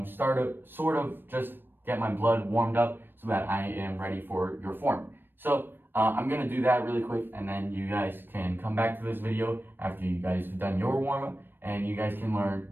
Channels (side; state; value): left; late; 0.096 ms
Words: sort of just get my blood warmed up so that I am ready for your form. So I'm gonna do that really quick, and then you guys can come back to this video after you guys have done your warm-up, and you guys can learn